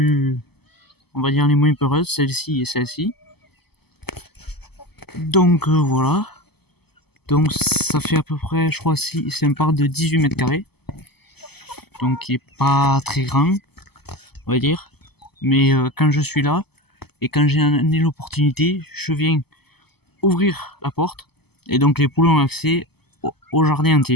on va dire les moins peureuses, celle-ci et celle-ci. Donc voilà. Donc ça fait à peu près, je crois, si c'est un parc de 18 mètres carrés. Donc qui est pas très grand, on va dire. Mais quand je suis là et quand j'ai l'opportunité, je viens ouvrir la porte et donc les poules ont accès au jardin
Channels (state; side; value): late; right; 0.97 ms